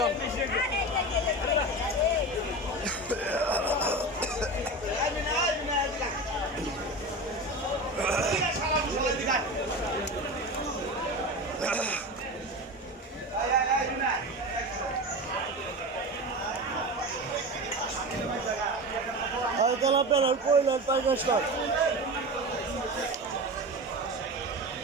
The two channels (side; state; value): both; normal; correlation 0.27